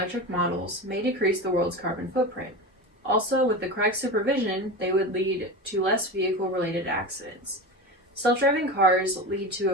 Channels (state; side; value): normal; both; correlation 0.26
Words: models may decrease the world's carbon footprint. Also, with the correct supervision, they would lead to less vehicle-related accidents. Self-driving cars lead to